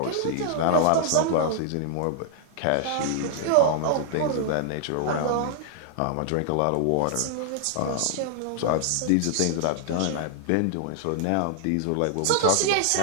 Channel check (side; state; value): both; different; correlation -0.01